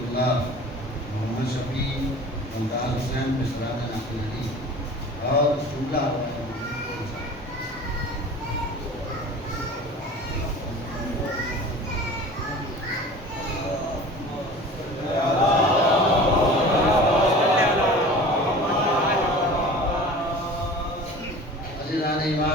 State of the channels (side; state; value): both; normal; correlation 0.40